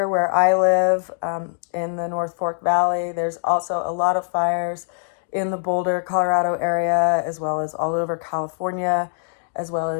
where I live, in the North Fork Valley. There's also a lot of fires in the Boulder, Colorado area, as well as all over California, as well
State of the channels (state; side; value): silent; right; digital silence